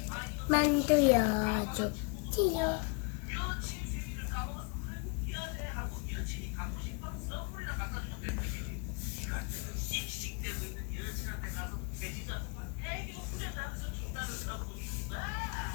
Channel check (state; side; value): quieter; right; 33.8 dB